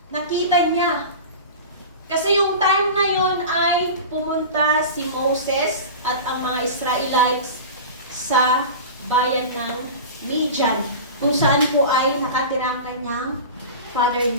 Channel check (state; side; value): inverted; both; correlation -0.32